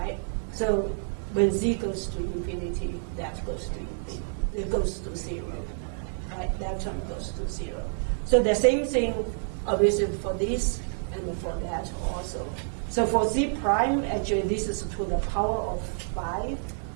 So when z goes to infinity, that goes to infinity. It goes to 0, right? That term goes to 0. So the same thing, obviously, for this and for that also. So for z prime, actually, this is to the power of 5.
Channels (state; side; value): silent; left; 59 dB below the other